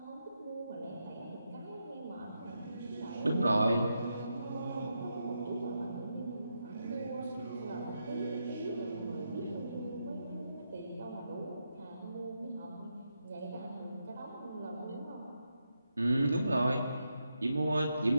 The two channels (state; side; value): inverted; both; correlation -0.84